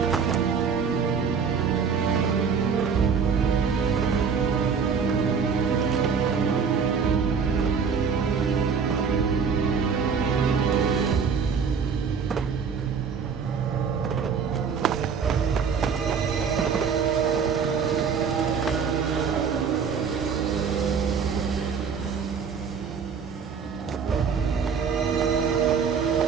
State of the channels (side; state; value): left; quieter; 6.2 dB